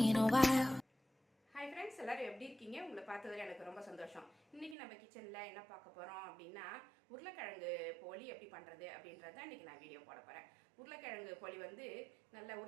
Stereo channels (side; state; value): left; drops out; at 4.8 s